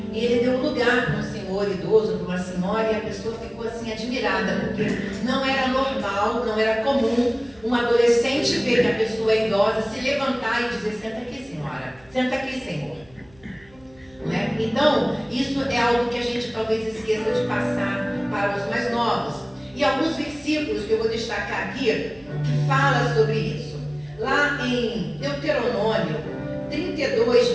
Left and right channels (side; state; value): right; noise; hum, 28 dB below the sound